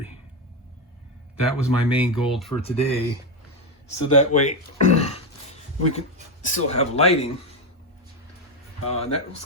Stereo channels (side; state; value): both; normal; correlation 0.09